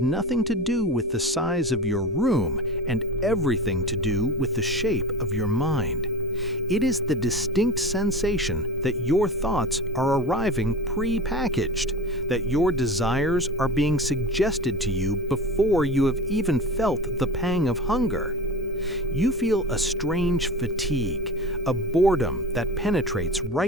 nothing to do with the size of your room and everything to do with the shape of your mind. It is the distinct sensation that your thoughts are arriving pre-packaged, that your desires are being suggested to you before you have even felt the pang of hunger. You feel a strange fatigue, a boredom that penetrates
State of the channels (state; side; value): normal; both; correlation 0.31